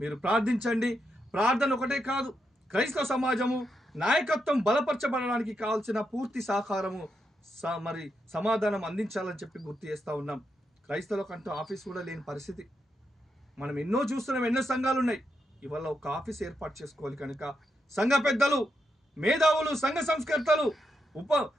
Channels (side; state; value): both; normal; correlation 0.83